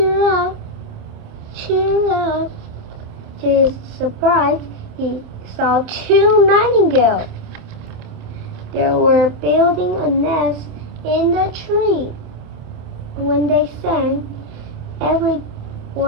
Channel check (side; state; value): left; late; 27 ms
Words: up, cheer up. To his surprise, he saw two nightingales. They were building a nest in the tree. When they sang,